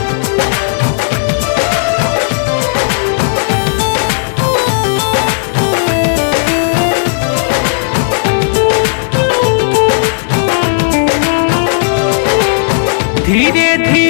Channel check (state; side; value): silent; right; digital silence